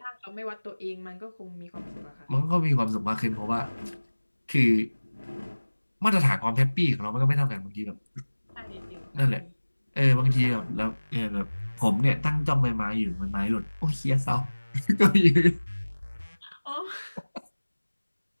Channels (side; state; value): both; inverted; correlation -1.00